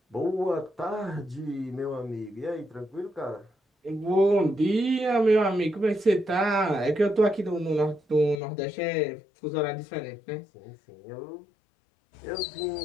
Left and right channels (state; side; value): drops out; right; at 8.4 s